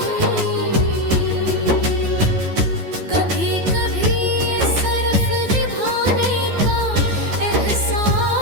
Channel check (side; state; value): left; late; 12 ms